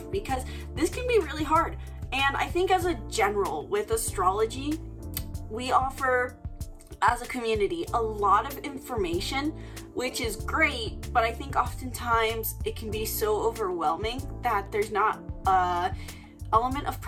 Because this can be really hard. And I think as a general with astrology, we offer as a community a lot of information, which is great, but I think oftentimes it can be so overwhelming that there's not a element of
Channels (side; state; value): both; identical; correlation 1.00